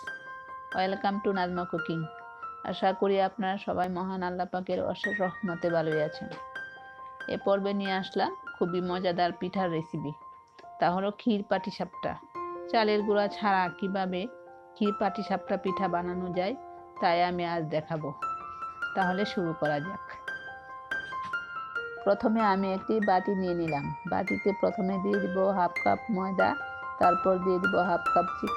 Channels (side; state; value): both; identical; correlation 1.00